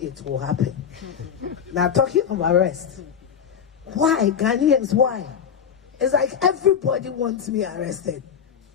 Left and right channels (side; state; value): right; quieter; 7.7 dB